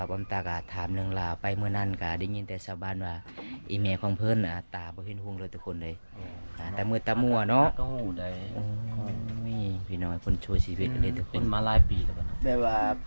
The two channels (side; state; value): both; inverted; correlation -1.00